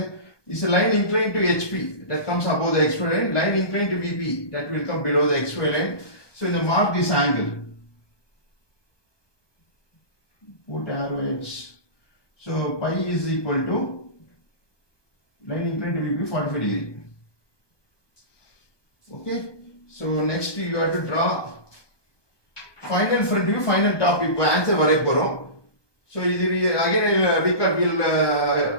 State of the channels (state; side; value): late; right; 1.2 ms